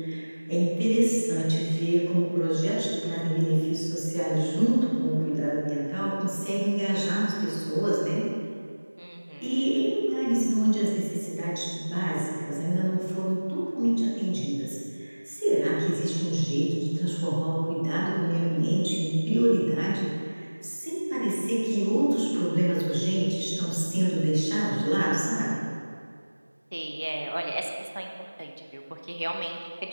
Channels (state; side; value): inverted; both; correlation -1.00